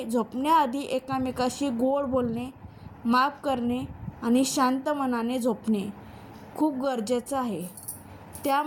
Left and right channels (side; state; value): both; identical; correlation 1.00